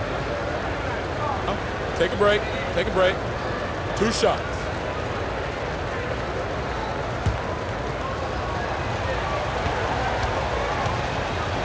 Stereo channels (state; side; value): identical; both; correlation 1.00